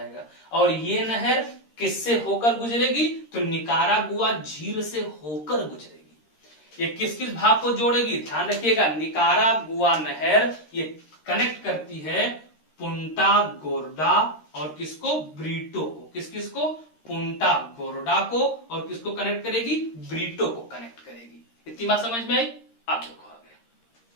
और ये नहर किससे होकर गुजरेगी, तो निकारागुआ झील से होकर गुजरेगी। ये किस किस भाग को जोड़ेगी, ध्यान रखिएगा, निकारागुआ नहर ये कनेक्ट करती है पुंटा गोर्डा और किसको, ब्रीटो को। किस किस को, पुंटा गोर्डा को, और किसको कनेक्ट करेगी, ब्रीटो को कनेक्ट करेगी। इतनी बात समझ में आई। आप देखो आगे,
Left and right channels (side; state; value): right; late; 13 ms